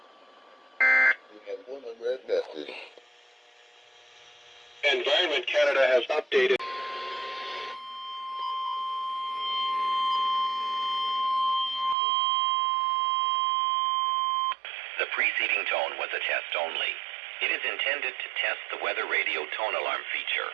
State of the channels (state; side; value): drops out; left; at 12.0 s